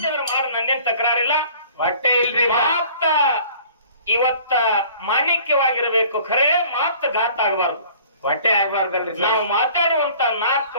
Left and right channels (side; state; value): both; inverted; correlation -0.51